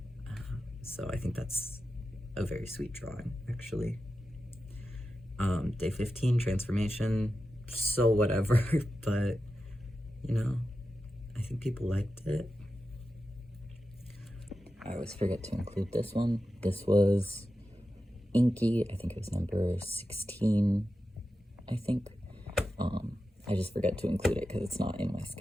So I think that's a very sweet drawing, actually. Day 15, transformation. So whatever, but you know, I think people liked it. I always forget to include this one. This was Inky. I think it was number 16, I think. I just forget to include it because it's not in my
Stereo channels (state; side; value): normal; both; correlation 0.91